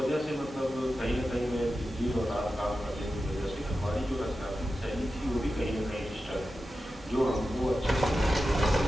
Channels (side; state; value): both; normal; correlation 0.92